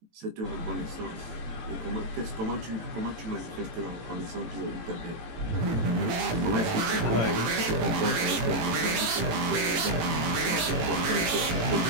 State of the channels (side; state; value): left; late; 18 ms